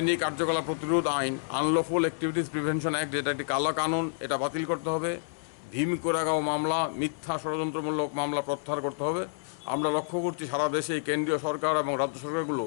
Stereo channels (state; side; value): silent; right; 59 dB below the other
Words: কার্যকলাপ প্রতিরোধ আইন, আনলফুল অ্যাক্টিভিটিস প্রিভেনশন অ্যাক্ট, যেটা একটি কালো কানুন, এটা বাতিল করতে হবে। ভীম কোরেগাঁও মামলা, মিথ্যা ষড়যন্ত্রমূলক মামলা প্রত্যাহার করতে হবে। আমরা লক্ষ্য করছি সারা দেশে কেন্দ্রীয় সরকার এবং রাজ্য সরকারগুলো